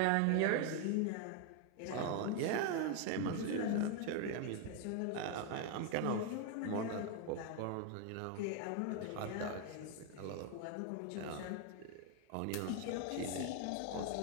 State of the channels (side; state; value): both; different; correlation 0.01